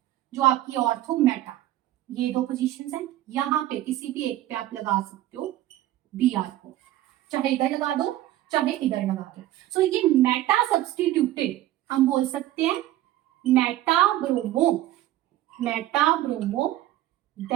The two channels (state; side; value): quieter; left; 14.5 dB